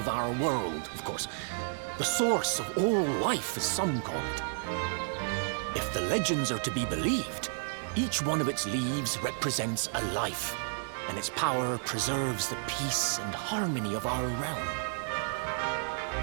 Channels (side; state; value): left; silent; digital silence